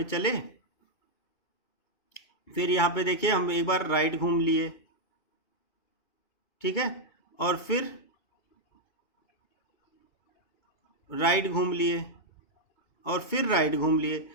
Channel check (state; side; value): late; right; 2.3 ms